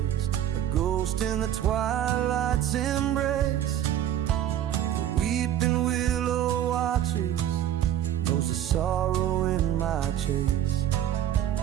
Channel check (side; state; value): left; quieter; 11.2 dB